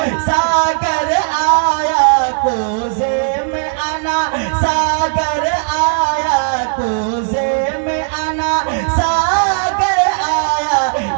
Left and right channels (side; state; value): left; silent; digital silence